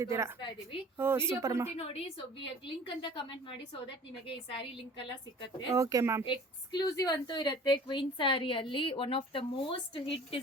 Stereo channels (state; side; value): normal; both; correlation 0.45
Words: ಇದೀವಿ. ಓ ವಿಡಿಯೋ ಸೂಪರ್ ಮ್ಯಾಮ್. ಪೂರ್ತಿ ನೋಡಿ. ಸೊ ಲಿಂಕ್ ಅಂತ ಕಮೆಂಟ್ ಮಾಡಿ, ಸೊ ದಟ್ ನಿಮಗೆ ಈ ಸ್ಯಾರಿ ಲಿಂಕ್ ಎಲ್ಲ ಸಿಕ್ಕತ್ತೆ. Okay ma'am. ಎಕ್ಸ್ಕ್ಲೂಸಿವ್ ಅಂತೂ ಇರುತ್ತೆ ಕ್ವೀನ್ ಸ್ಯಾರಿ ಅಲ್ಲಿ. One of the most hit